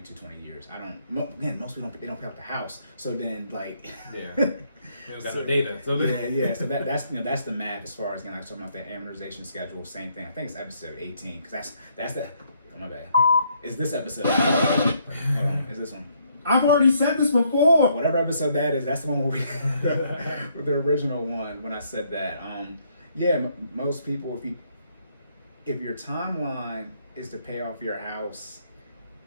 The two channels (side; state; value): both; inverted; correlation -0.70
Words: years. I don't. Again, most people don't pay off the house. So then like. Yeah. You don't got no data. So yeah. So that's the math as far as like talking about the amortization schedule. Same thing. I think it's episode 18 because that's the. Oh my bad. It's this episode. Hold on. It's this one. I've already said this before. Whatever episode that is, that's the one where with the original one when I said that. Most people, if your timeline is to pay off your house,